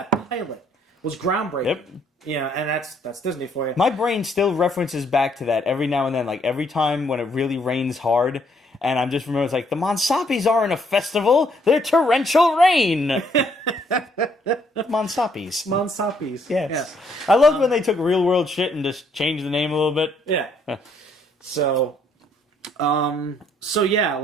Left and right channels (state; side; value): normal; both; correlation 0.68